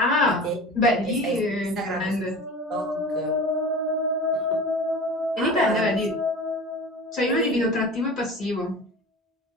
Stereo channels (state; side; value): normal; both; correlation 0.35